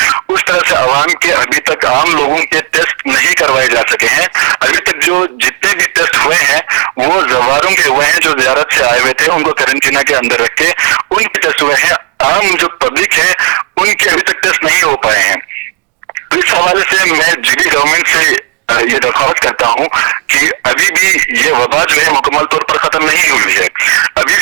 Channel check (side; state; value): left; quieter; 31.3 dB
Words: اس طرح سے عوام کے ابھی تک عام لوگوں کے ٹیسٹ نہیں کروائے جا سکے ہیں. ابھی تک جو جتنے بھی ٹیسٹ ہوئے ہیں وہ زواروں کے ہوئے ہیں، جو زیارت سے آئے ہوئے تھے ان کو قرنطینہ کے اندر رکھ کے ان کے ٹیسٹ ہوئے ہیں. عام جو پبلک ہے ان کے ابھی تک ٹیسٹ نہیں ہو پائے ہیں. اس حوالے سے میں جی بی گورنمنٹ سے یہ درخواست کرتا ہوں کہ ابھی بھی یہ وبا جو ہے مکمل طور پر ختم نہیں ہوئی ہے. ابھی